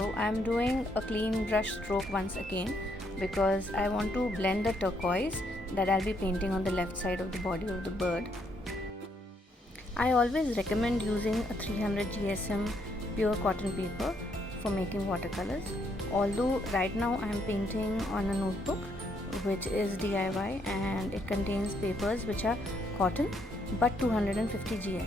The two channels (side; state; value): both; normal; correlation 0.73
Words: I'm doing a clean brush stroke once again because I want to blend the turquoise that I'll be painting on the left side of the body of the bird. I always recommend using a 300 GSM pure cotton paper for making watercolors. Although right now I am painting on a notebook which is DIY and it contains papers which are cotton but 250